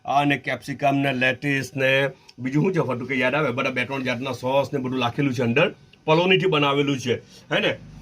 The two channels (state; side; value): identical; both; correlation 1.00